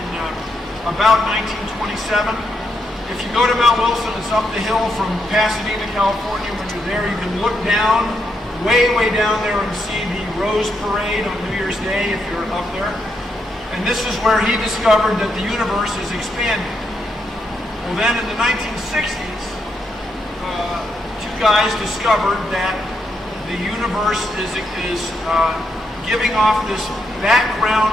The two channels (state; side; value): normal; both; correlation 0.80